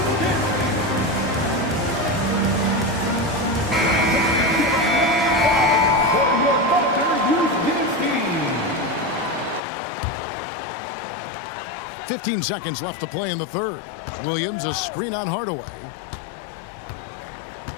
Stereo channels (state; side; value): drops out; right; at 9.6 s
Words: .15 seconds left to play in the third. Williams, a screen on Hardaway.